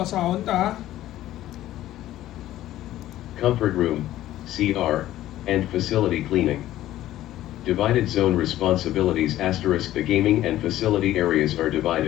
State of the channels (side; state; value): right; quieter; 14.0 dB